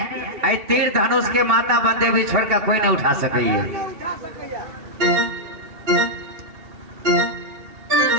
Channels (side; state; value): left; late; 2.7 ms